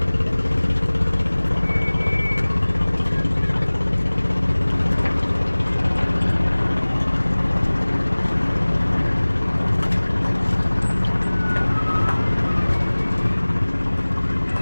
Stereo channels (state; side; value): inverted; both; correlation -1.00